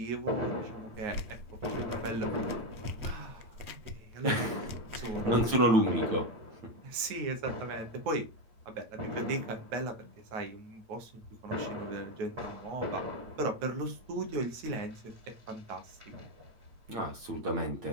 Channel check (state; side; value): late; left; 8.9 ms